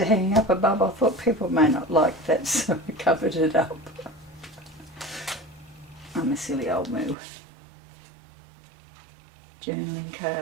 hanging up above, I thought people may not like that, so I covered it up. I'm a silly old moo. Journaling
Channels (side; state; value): left; drops out; at 7.2 s